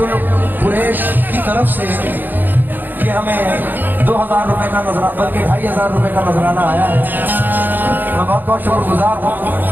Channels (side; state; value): left; late; 0.089 ms